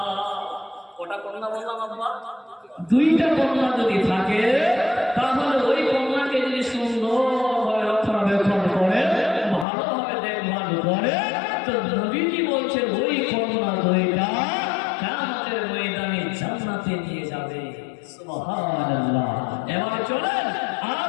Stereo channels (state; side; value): drops out; right; at 9.7 s